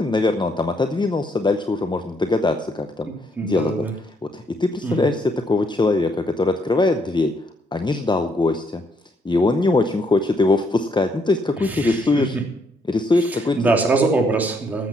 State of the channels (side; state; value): both; normal; correlation 0.72